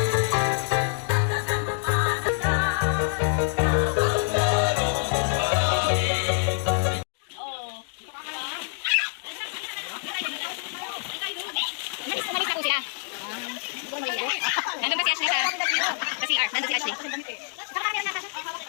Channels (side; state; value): right; silent; digital silence